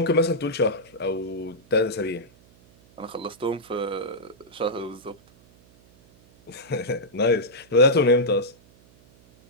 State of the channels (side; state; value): right; noise; hum, 28 dB below the sound